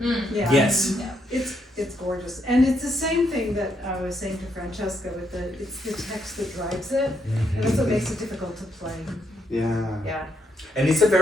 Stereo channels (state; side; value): normal; both; correlation 0.77